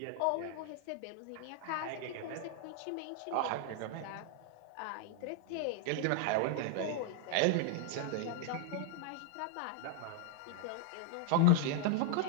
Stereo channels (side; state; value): both; different; correlation 0.00